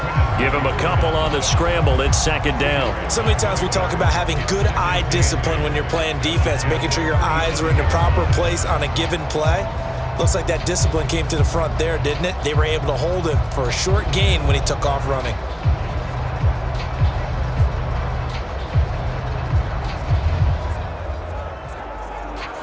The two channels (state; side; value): identical; both; correlation 1.00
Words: Give him a couple on the scramble. It's second down. So many times we talk about having good eye discipline when you're playing defense, making sure your eyes are in the proper place on a given play. Looks like that discipline came to the front there, didn't it? They were able to hold him for a short gain when he took off running.